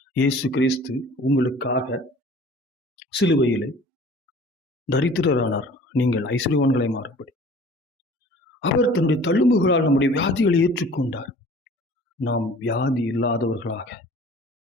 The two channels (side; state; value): both; normal; correlation 0.47